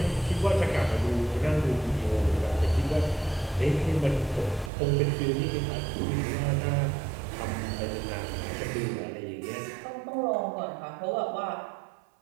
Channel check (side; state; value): left; drops out; at 4.7 s